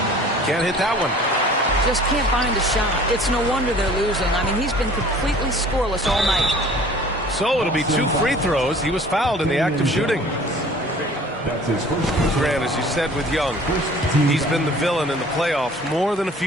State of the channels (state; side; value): normal; both; correlation 0.49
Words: Can't hit that one. Just can't find a shot. It's no wonder they're losing. I mean, he's been completely scoreless all night. So it'll be 2 free throws. He was fouled in the act of shooting. Grant, as you said with Young, he's been the villain in the playoffs more than a